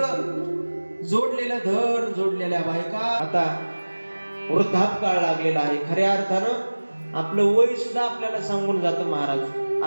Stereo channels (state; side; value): inverted; both; correlation -1.00